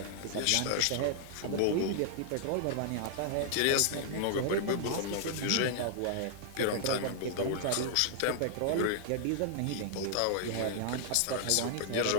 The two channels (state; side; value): different; both; correlation -0.01